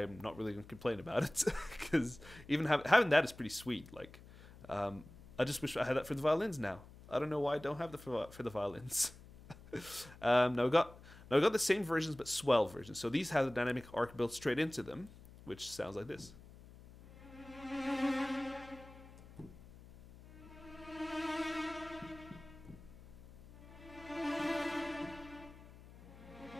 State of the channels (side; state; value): left; noise; hum, 19 dB below the sound